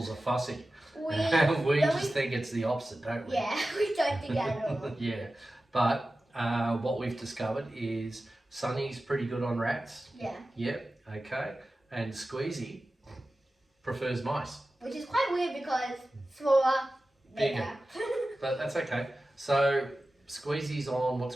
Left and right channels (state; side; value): normal; both; correlation 0.95